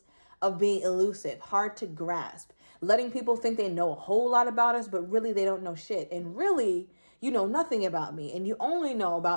of being elusive, hard to grasp, letting people think they know a whole lot about us, but really they don't know shit. And really, you know nothing about me. And you only know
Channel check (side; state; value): both; inverted; correlation -1.00